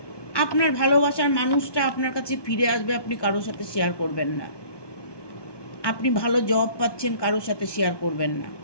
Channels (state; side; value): late; right; 1.2 ms